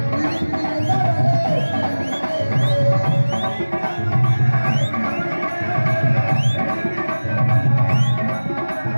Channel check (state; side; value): inverted; both; correlation -1.00